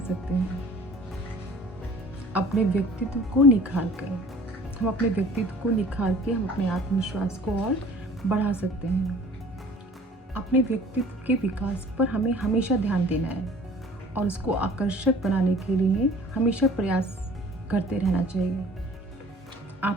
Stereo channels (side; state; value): both; normal; correlation 0.49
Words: हैं? अपने व्यक्तित्व को निखार कर, हम अपने व्यक्तित्व को निखार के हम अपने आत्मविश्वास को और बढ़ा सकते हैं। अपने व्यक्तित्व के विकास पर हमें हमेशा ध्यान देना है और उसको आकर्षक बनाने के लिए हमेशा प्रयास करते रहना चाहिए।